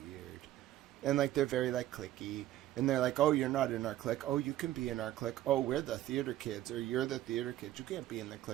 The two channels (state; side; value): quieter; left; 13.9 dB